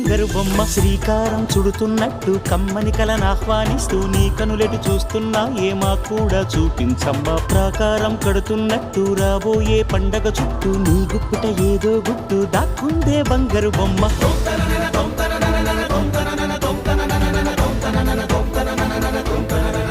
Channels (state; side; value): identical; both; correlation 1.00